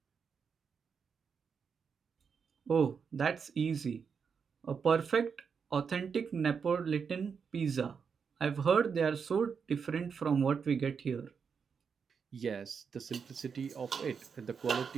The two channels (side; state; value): left; quieter; 6.2 dB